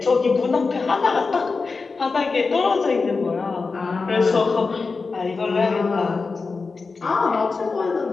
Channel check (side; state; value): right; quieter; 4.4 dB